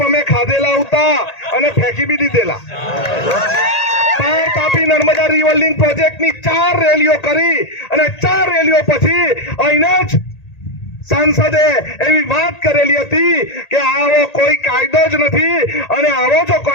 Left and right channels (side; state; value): right; late; 1.8 ms